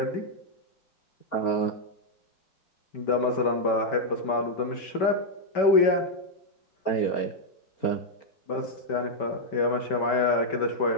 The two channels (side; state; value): right; late; 5.2 ms